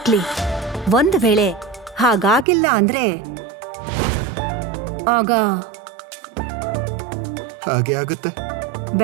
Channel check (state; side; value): drops out; left; at 2.5 s